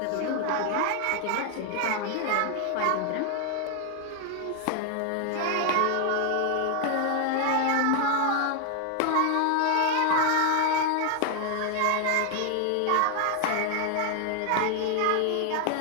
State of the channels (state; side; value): different; both; correlation 0.00